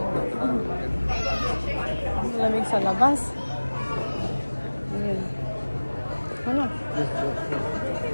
Lamig sa labas. Ayan. Ano?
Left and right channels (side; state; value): both; inverted; correlation -1.00